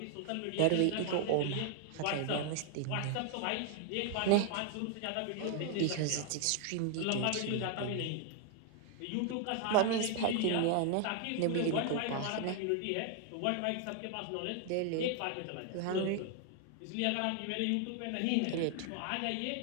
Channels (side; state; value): both; different; correlation 0.00